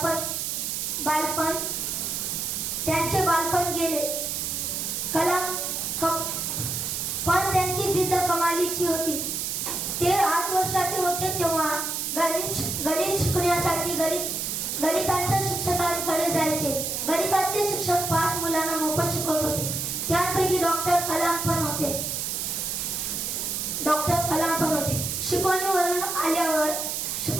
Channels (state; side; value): noise; right; hiss, 2 dB below the sound